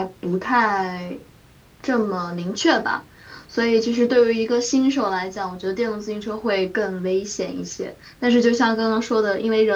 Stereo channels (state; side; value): identical; both; correlation 1.00